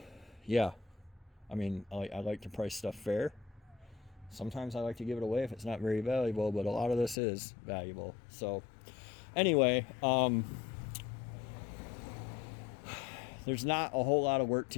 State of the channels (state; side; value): drops out; right; at 7.2 s